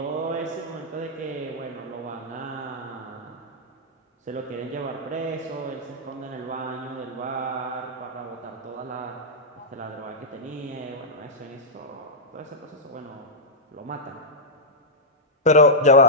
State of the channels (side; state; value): both; normal; correlation -0.08